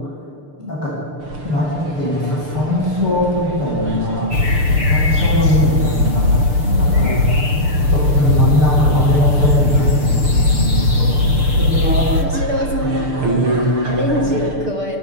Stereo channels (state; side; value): late; left; 6.7 ms